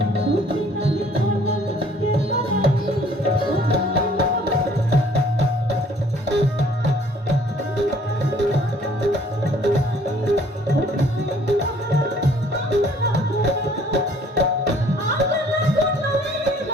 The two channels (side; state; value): both; normal; correlation 0.58